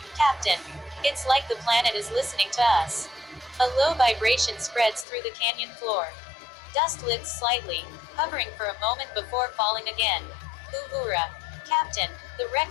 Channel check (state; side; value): drops out; right; at 5.1 s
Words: Captain. It's like the planet is listening to us. A low vibration spreads through the canyon floor. Dust lifts slightly, hovering for a moment before falling again. Uhura. Captain, the wreck